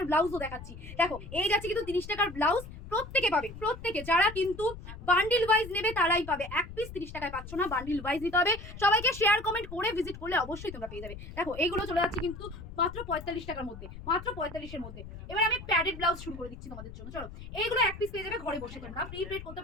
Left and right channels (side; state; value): left; noise; rumble, 13 dB below the sound